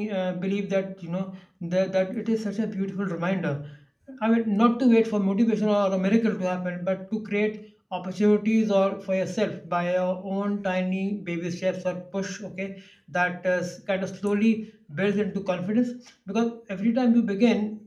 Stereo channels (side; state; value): both; identical; correlation 1.00